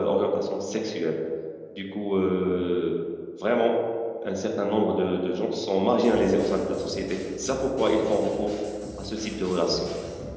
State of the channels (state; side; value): identical; both; correlation 1.00